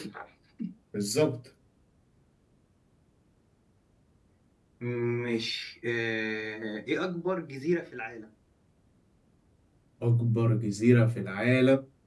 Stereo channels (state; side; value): identical; both; correlation 1.00